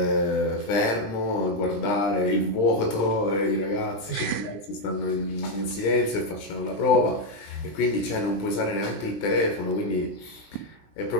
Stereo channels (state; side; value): late; right; 20 ms